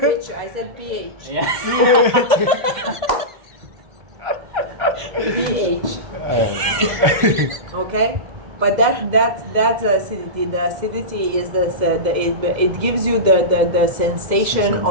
I said pH. Yeah. pH. Okay, but that's acidity. The acidity is it gives you the sensation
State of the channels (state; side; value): late; left; 2.1 ms